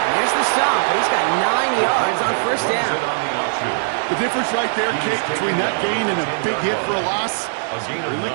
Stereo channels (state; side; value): silent; left; 66 dB below the other